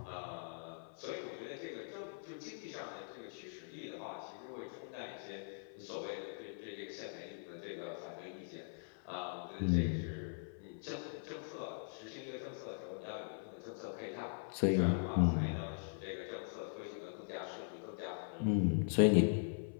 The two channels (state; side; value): silent; right; 50 dB below the other